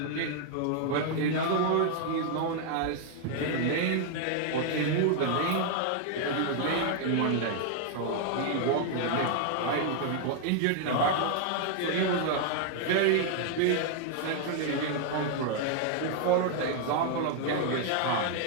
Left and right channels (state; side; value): different; both; correlation 0.00